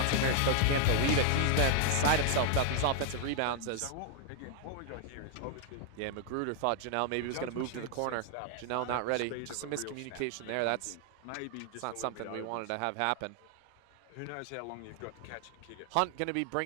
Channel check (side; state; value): both; different; correlation 0.00